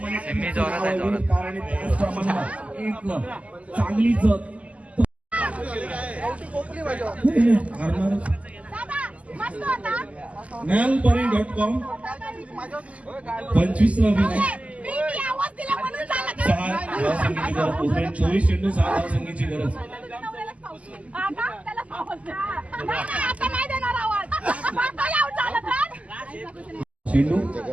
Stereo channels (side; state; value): left; late; 0.067 ms